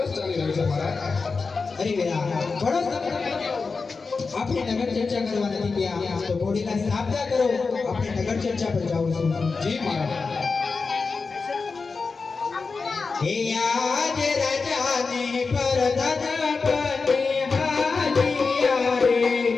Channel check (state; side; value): quieter; right; 4.5 dB